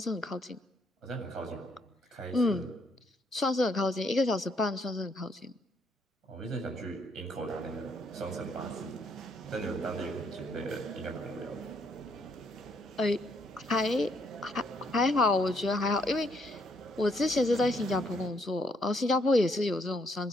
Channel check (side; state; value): both; normal; correlation 0.71